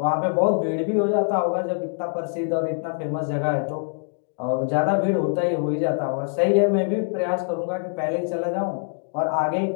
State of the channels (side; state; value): right; silent; digital silence